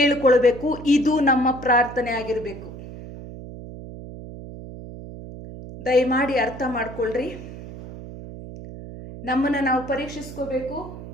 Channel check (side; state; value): right; noise; hum, 13 dB below the sound